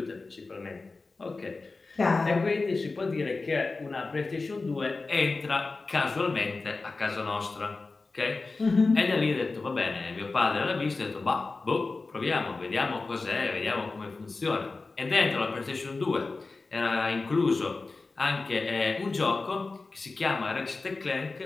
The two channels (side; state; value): right; quieter; 3.7 dB